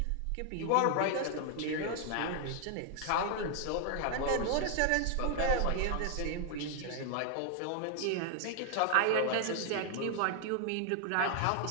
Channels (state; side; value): different; both; correlation 0.00